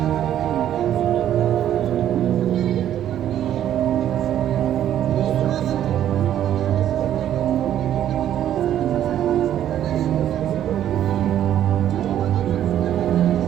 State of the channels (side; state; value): left; quieter; 11.1 dB